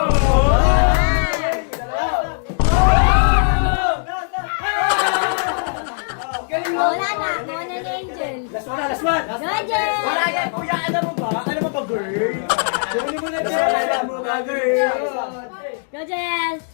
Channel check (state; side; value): silent; right; digital silence